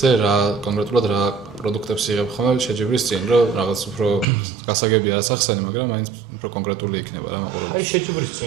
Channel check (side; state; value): left; drops out; at 4.2 s